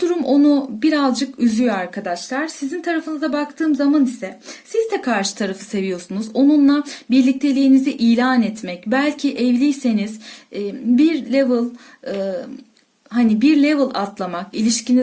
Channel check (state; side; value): identical; both; correlation 1.00